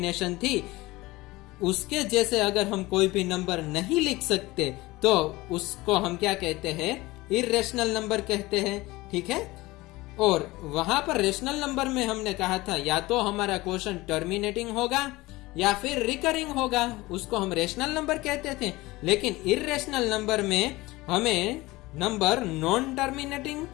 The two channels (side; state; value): right; quieter; 20.3 dB